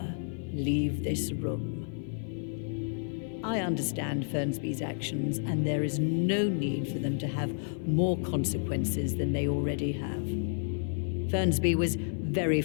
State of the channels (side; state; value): right; silent; 55 dB below the other